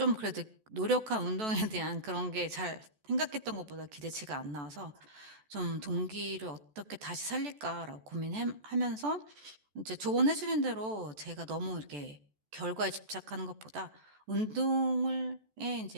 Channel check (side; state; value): left; late; 14 ms